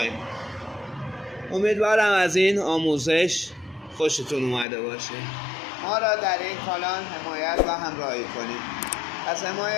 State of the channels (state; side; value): drops out; right; at 4.7 s